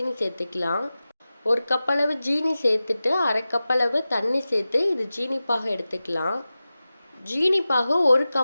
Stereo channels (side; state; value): both; inverted; correlation -0.95